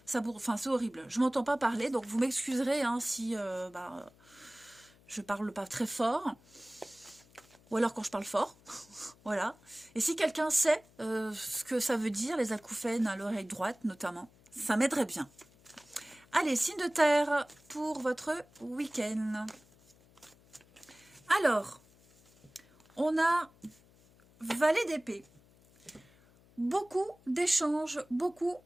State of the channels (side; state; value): left; noise; hum, 28 dB below the sound